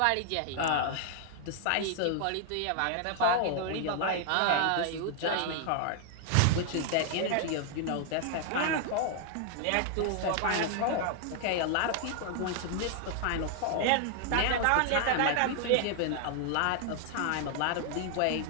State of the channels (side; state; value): both; different; correlation 0.00